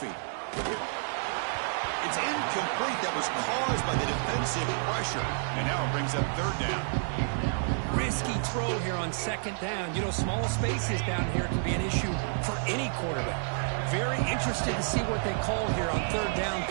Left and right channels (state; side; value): silent; left; digital silence